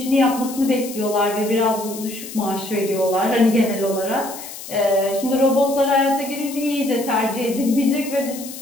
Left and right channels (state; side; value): noise; left; hiss, 12 dB below the sound